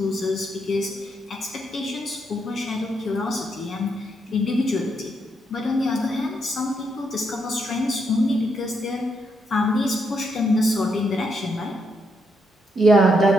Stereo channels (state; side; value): normal; both; correlation 0.78